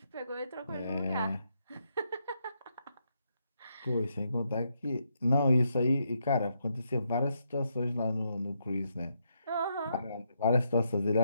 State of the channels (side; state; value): both; inverted; correlation -0.79